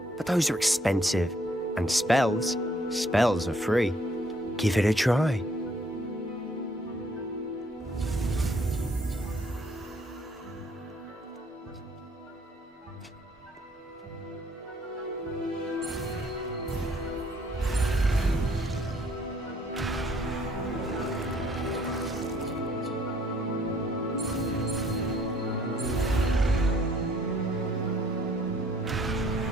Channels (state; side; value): normal; both; correlation 0.64